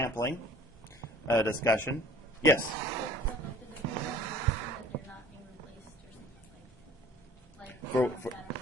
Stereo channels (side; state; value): both; normal; correlation 0.49